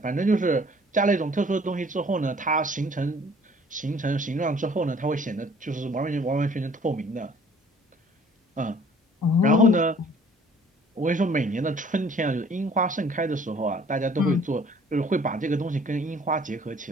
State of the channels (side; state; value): both; normal; correlation 0.55